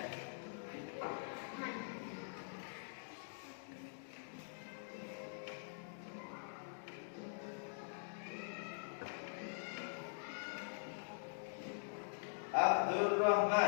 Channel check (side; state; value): right; silent; digital silence